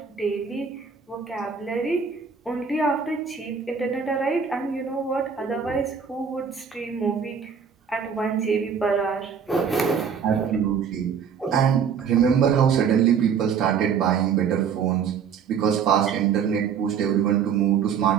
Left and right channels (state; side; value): quieter; left; 6.9 dB